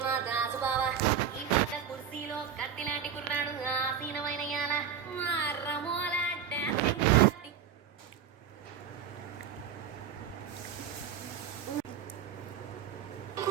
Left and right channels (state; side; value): quieter; left; 8.2 dB